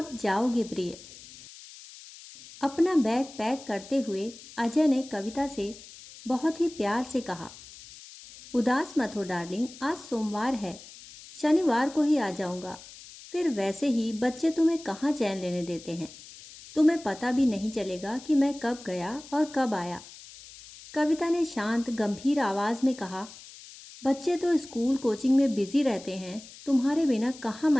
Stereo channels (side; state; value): left; noise; hiss, 18 dB below the sound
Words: जाओगे प्रिय। अपना बैग पैक करते हुए अजय ने कविता से बहुत ही प्यार से कहा, उदास मत हो डार्लिंग, आज सोमवार है, शनिवार को ही आ जाऊंगा। फिर वैसे ही बच्चे तुम्हें कहाँ चैन लेने देते हैं, तुम्हें पता भी नहीं चलेगा कि मैं कब गया और कब आया। कविता ने शांत गंभीर आवाज में कहा, बच्चे तो स्कूल कोचिंग में बिजी रहते हैं, तुम्हारे बिना कहाँ